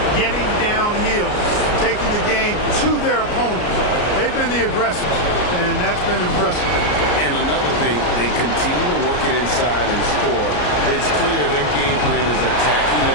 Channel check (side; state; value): right; late; 34 ms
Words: getting downhill, taking the game to their opponents. They've been the aggressors, and that's been impressive. And another thing, they continue to work it inside and score. It's clear their game plan is attacking